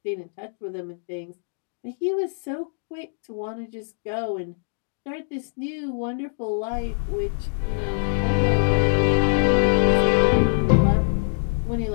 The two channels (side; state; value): right; silent; digital silence